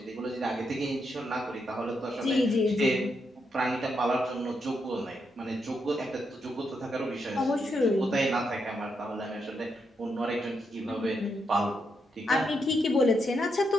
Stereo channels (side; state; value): both; normal; correlation 0.81